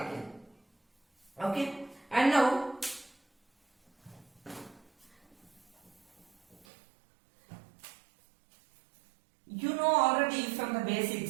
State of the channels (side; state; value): left; drops out; at 6.7 s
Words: Okay, and now you know already from the